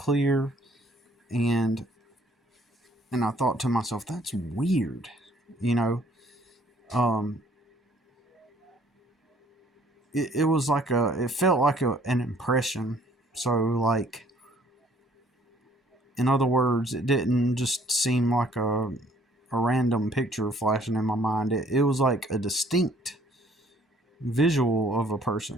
and I thought to myself, that's weird, you know. Um, it was like it felt like an impression. So like, in other words, it didn't just seem like a random picture flashing in my mind. It was like a distinct visual of a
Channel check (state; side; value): normal; both; correlation 0.60